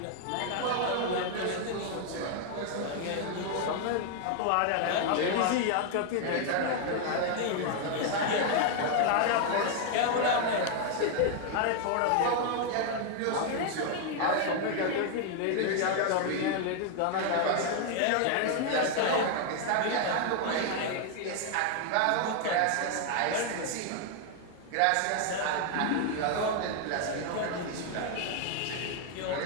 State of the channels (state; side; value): different; both; correlation 0.00